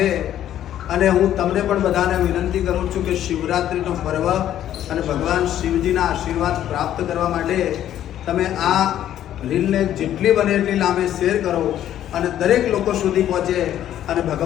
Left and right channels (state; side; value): quieter; right; 11.5 dB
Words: અને હું તમને પણ બધાને વિનંતી કરું છું કે શિવરાત્રિનો પર્વ અને ભગવાન શિવજીના આશીર્વાદ પ્રાપ્ત કરવા માટે તમે આ રીલને જેટલી બને એટલી લાંબે શેર કરો અને દરેક લોકો સુધી પહોંચે અને